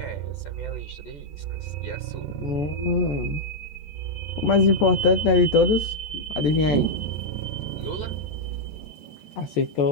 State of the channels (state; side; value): late; right; 14 ms